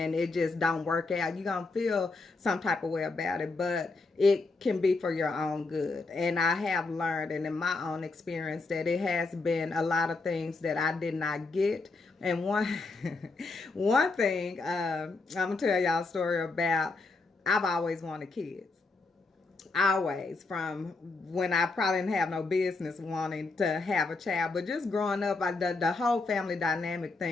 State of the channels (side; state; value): right; quieter; 3.7 dB